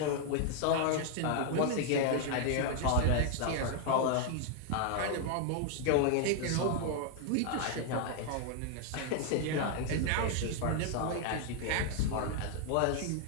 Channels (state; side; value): different; both; correlation 0.00